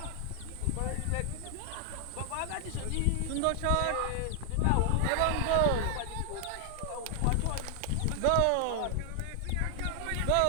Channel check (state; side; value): different; both; correlation 0.00